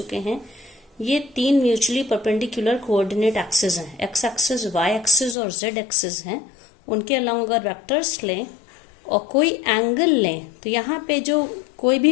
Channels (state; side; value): drops out; right; at 5.4 s